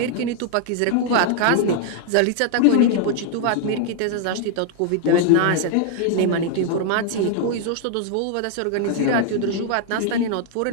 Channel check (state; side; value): different; both; correlation 0.00